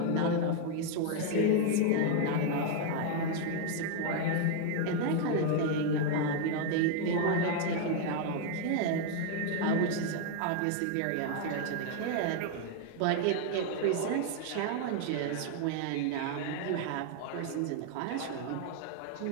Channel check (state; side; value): different; both; correlation 0.00